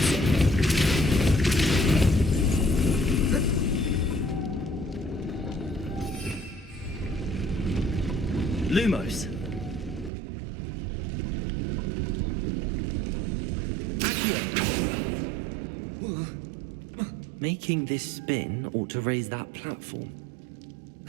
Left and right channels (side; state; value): left; drops out; at 10.1 s